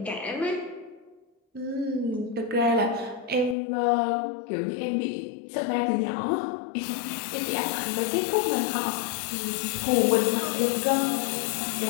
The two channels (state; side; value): drops out; right; at 3.6 s